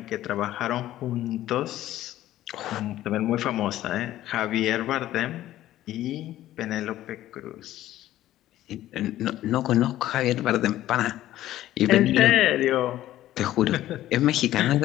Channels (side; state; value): right; quieter; 13.9 dB